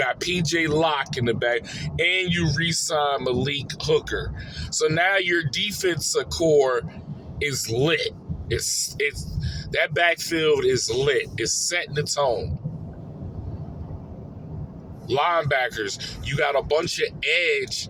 PJ Locke in the back. And you re-signed Malik Hooker. So now your defensive core is lit. It's that backfield is lit. It's setting the tone. Linebackers, you got a bunch of edge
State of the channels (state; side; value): identical; both; correlation 1.00